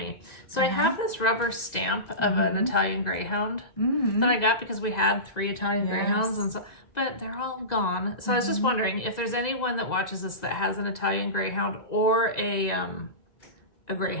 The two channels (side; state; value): right; late; 2.0 ms